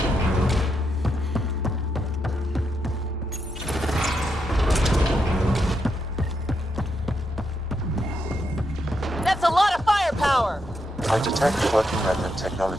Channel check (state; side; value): normal; both; correlation 0.82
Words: That's a lot of firepower! I detect working remnant